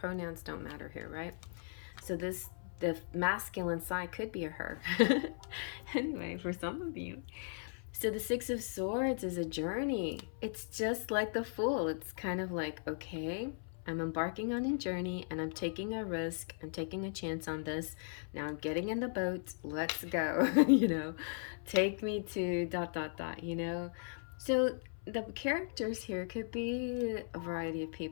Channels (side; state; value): right; silent; 53 dB below the other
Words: don't matter here, right? So the masculine side could be a her. Anyway, for some of you. So the Six of Swords is a journey. It's just like the Fool. It's kind of like, okay, I'm embarking on a journey and I'm taking a risk. I'm taking a chance on this. Now I'm getting in the boat. Let's go. You know, take me to ... you know. So the characters here could be a variety of